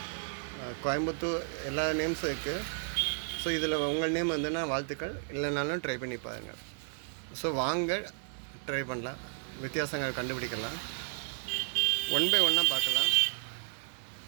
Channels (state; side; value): silent; left; digital silence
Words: கோயம்புத்தூர் எல்லா நேம்ஸும் இருக்குது. ஸோ இதில் உங்கள் நேம் வந்துன்னா வாழ்த்துக்கள், இல்லைனாலும் ட்ரை பண்ணி பாருங்கள். ஸோ வாங்க ட்ரை பண்ணலாம், வித்தியாசங்கள் கண்டுபிடிக்கலாம். 1 by 1 பார்க்கலாம்.